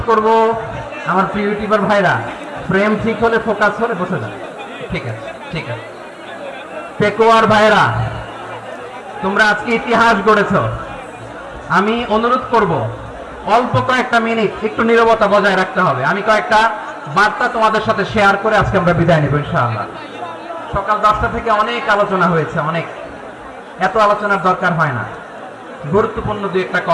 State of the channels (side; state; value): both; identical; correlation 1.00